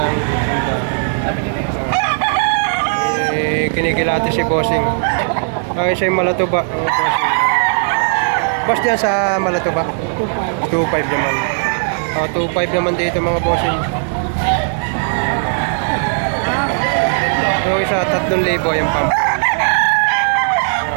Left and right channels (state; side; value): silent; left; digital silence